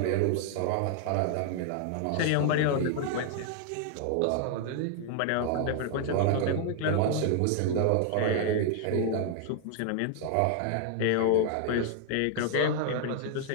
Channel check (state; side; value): different; both; correlation 0.00